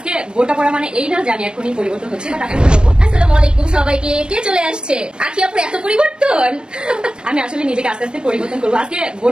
বোনটা পরা মানে এই না যে আমি এখনই পরিবর্তন হচ্ছে, বাট আমি করবো। আসসালামু আলাইকুম সবাইকে। কে চলে আসছে? আখি আপুর এত পরিবর্তন। আমি আসলে নিজেকে আস্তে আস্তে পরিবর্তন করবো। আজকে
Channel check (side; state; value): left; late; 0.049 ms